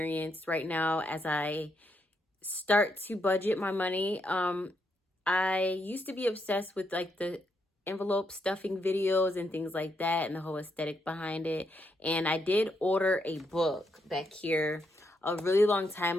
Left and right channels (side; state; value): both; normal; correlation 0.78